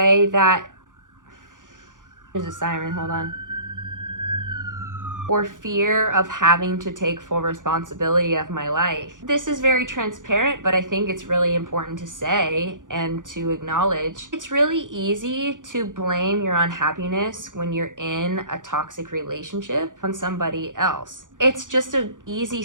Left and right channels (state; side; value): late; left; 0.88 ms